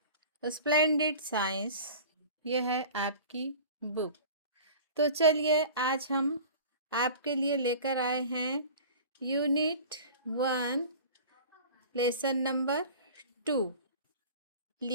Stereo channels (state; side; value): inverted; both; correlation -0.40